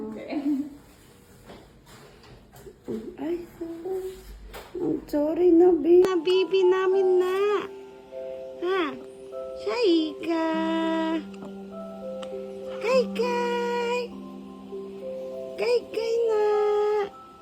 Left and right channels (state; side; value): identical; both; correlation 1.00